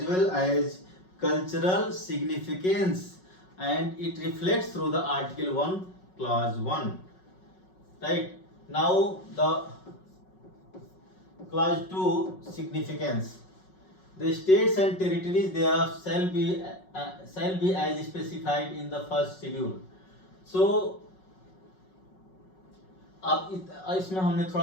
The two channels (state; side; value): late; right; 5.4 ms